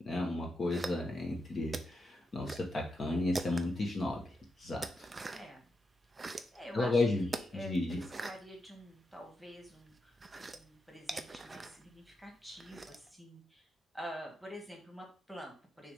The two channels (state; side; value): normal; both; correlation 0.85